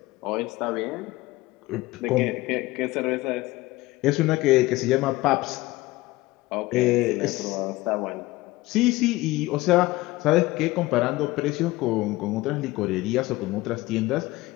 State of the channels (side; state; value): right; quieter; 19.4 dB